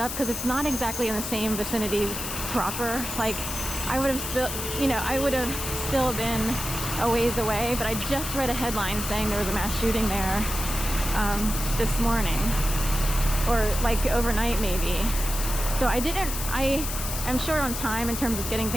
because it's not exactly in the same vicinity proper. Like, I would have still been a ways away, but I just read a headline saying there was a mass shooting there this morning, or like overnight maybe. So I am short on time in terms of getting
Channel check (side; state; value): left; noise; hiss, 5 dB below the sound